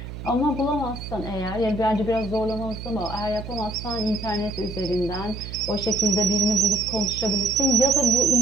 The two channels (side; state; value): right; noise; hum, 10 dB below the sound